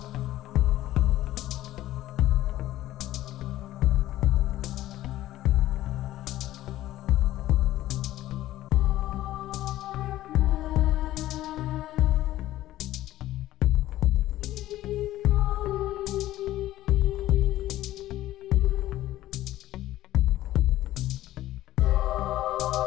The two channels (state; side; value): quieter; right; 14.7 dB